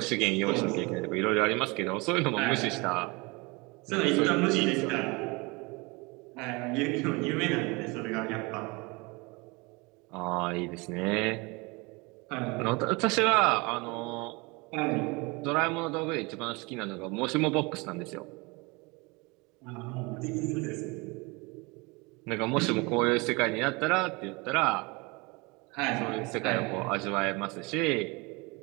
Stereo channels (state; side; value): quieter; left; 26.7 dB